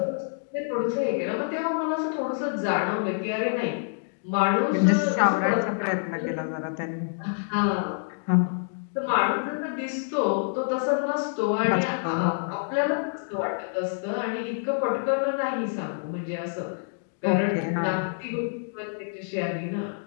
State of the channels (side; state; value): right; silent; digital silence